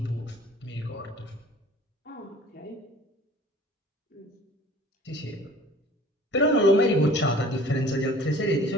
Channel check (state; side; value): normal; both; correlation 0.47